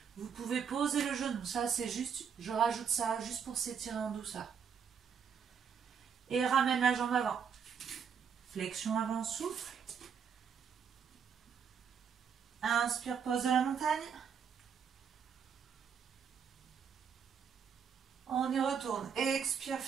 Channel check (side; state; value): left; quieter; 7.0 dB